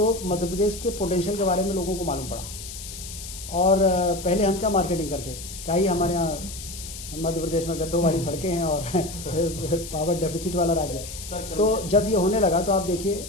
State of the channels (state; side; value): noise; left; hiss, 11 dB below the sound